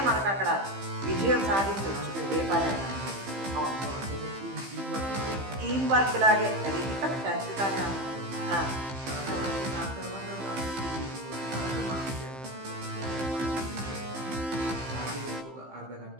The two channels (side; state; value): left; late; 15 ms